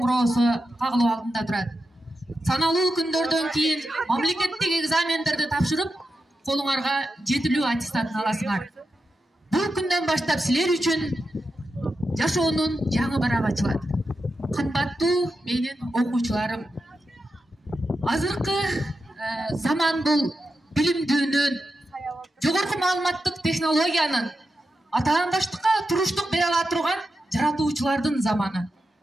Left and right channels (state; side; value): normal; both; correlation 0.89